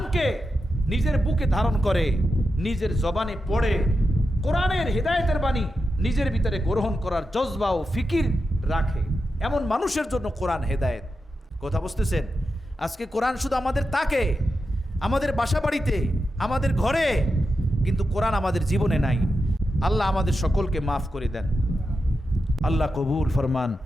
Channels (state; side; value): normal; both; correlation 0.89